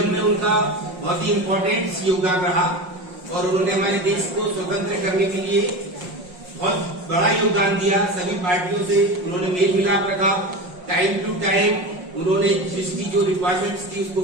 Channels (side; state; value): left; late; 5.5 ms